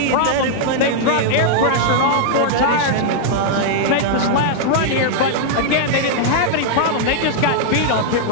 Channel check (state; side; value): different; both; correlation -0.01